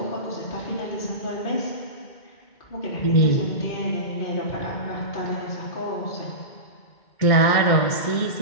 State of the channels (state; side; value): late; right; 2.1 ms